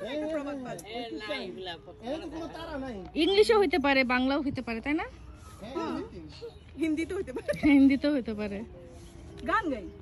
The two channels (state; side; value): identical; both; correlation 1.00